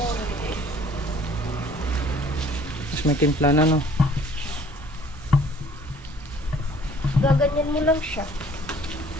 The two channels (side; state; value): both; normal; correlation 0.55